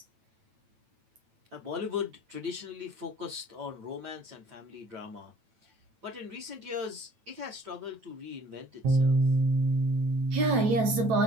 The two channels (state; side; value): late; left; 9.0 ms